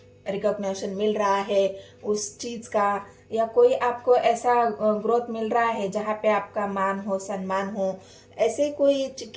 रिकॉग्निशन मिल रहा है उस चीज का, या कोई आपको ऐसा ग्रोथ मिल रहा है जहाँ पे आपका मान हो, सम्मान हो, ऐसे कोई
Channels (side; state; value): both; identical; correlation 1.00